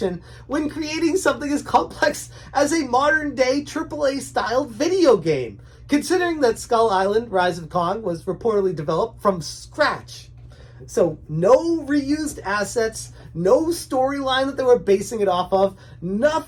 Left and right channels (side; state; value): both; identical; correlation 1.00